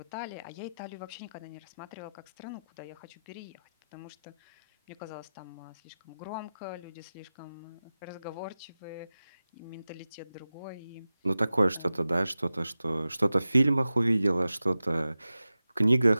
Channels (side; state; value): both; inverted; correlation -0.95